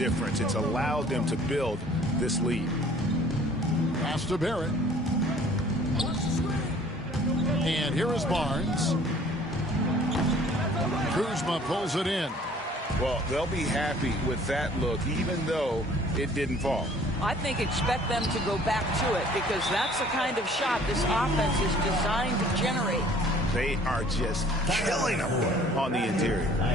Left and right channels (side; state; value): both; normal; correlation 0.54